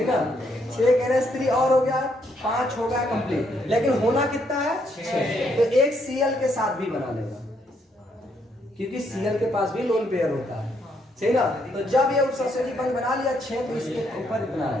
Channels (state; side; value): normal; both; correlation 0.73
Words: है, 6 NH3 और हो गया, 5 हो गया कंप्लीट। लेकिन होना कितना है, 6, तो एक Cl के साथ भी बना लेगा, क्योंकि Cl के पास भी लोन पेयर होता है, सही ना। तो जब ये उपसंयोजी बंध बना लिया 6, तो इसके ऊपर इतना